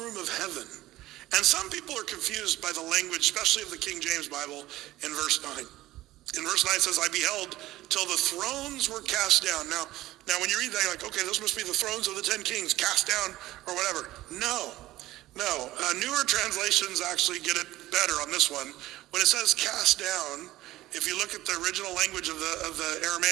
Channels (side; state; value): left; quieter; 16.3 dB